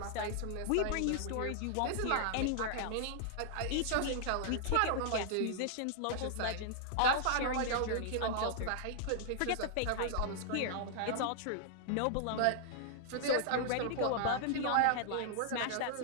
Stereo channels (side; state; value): both; different; correlation -0.01